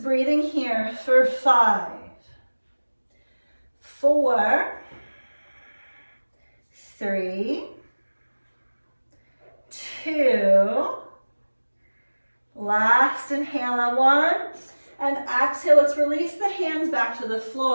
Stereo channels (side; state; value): both; inverted; correlation -1.00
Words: breathing here for 5, 4, 3, 2, last inhale on 1, and exhale. Let's release the hands back to the